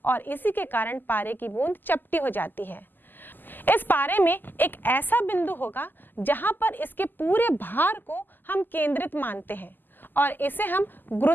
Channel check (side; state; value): right; late; 0.089 ms